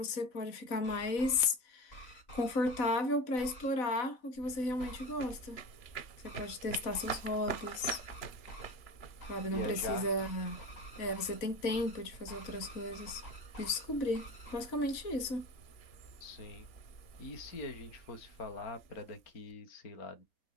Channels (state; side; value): late; right; 4.0 ms